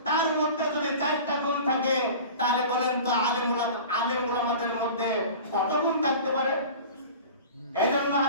তার মধ্যে যদি 4টা গুণ থাকে, তাহলে বলেন তো আলেম উলামাদের মধ্যে কত গুণ থাকতে পারে? এই জন্য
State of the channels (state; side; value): inverted; both; correlation -0.38